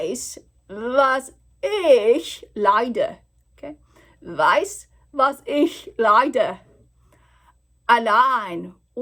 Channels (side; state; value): both; identical; correlation 1.00